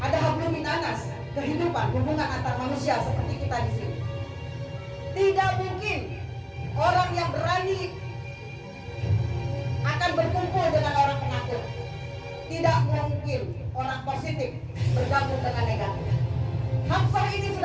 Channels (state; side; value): identical; both; correlation 1.00